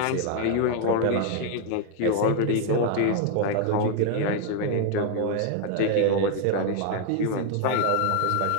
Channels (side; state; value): both; different; correlation 0.00